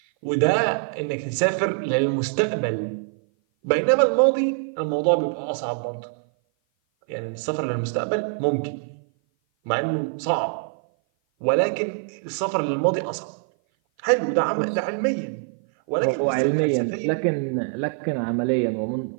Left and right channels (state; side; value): silent; left; 56 dB below the other